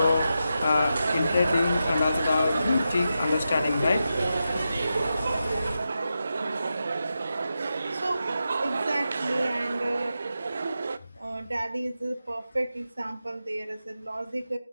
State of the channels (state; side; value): inverted; both; correlation -0.89